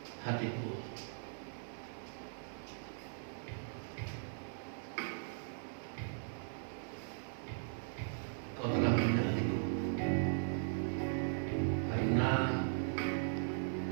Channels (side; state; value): left; silent; 52 dB below the other